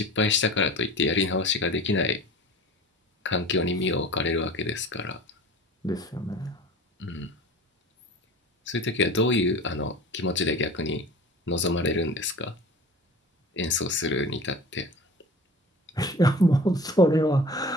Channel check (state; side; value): normal; both; correlation 0.39